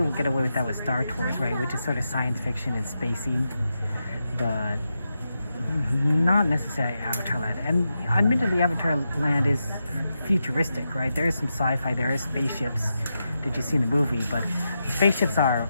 away with that with Star Tours, right? Which is sort of science fiction and spacey. But not necessarily Avatar Land. And admittedly, Avatar Land is futuristic, right? There is some sci-fi, there is spaceships that you see in the movie, but spaceships are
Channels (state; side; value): inverted; both; correlation -0.87